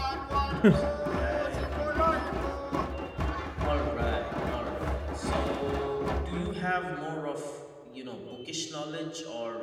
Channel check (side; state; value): both; identical; correlation 1.00